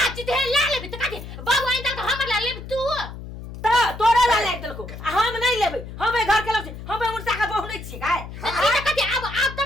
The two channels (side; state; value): left; noise; hum, 11 dB below the sound